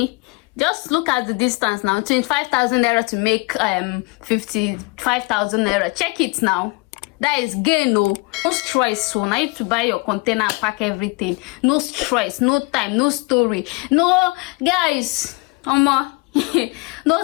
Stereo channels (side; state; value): right; quieter; 27.9 dB